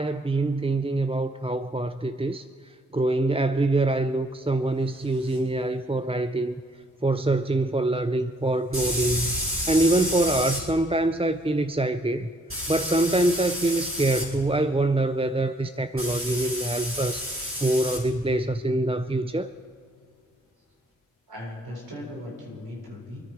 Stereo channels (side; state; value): both; normal; correlation 0.66